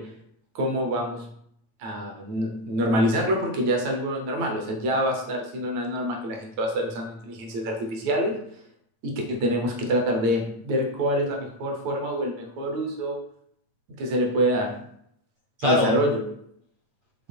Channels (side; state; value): left; late; 9.1 ms